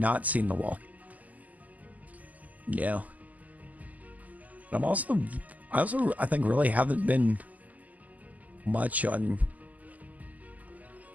seen The Wall. Yeah. But I think really haven't been much on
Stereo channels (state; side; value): late; left; 0.077 ms